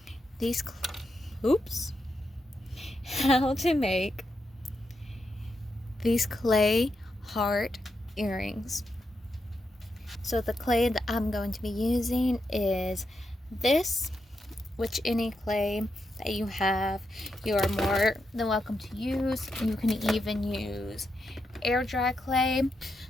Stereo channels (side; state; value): both; normal; correlation 0.84